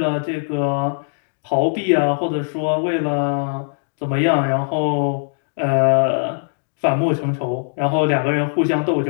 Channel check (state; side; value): silent; right; digital silence